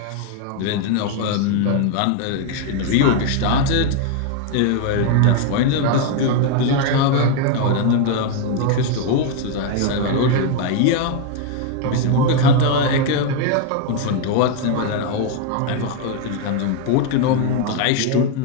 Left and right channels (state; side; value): different; both; correlation 0.01